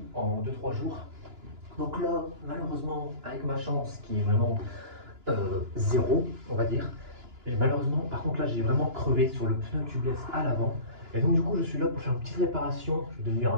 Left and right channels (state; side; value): late; left; 2.9 ms